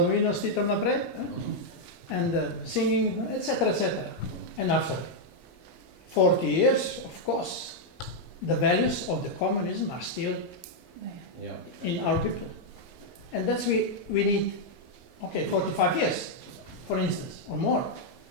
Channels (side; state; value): both; normal; correlation -0.02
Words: stitom naprej, and singing, etc., etc. And after 40 years, of course, the values of the communism are still in our people. And that's we need, 45 years. for instance, or more,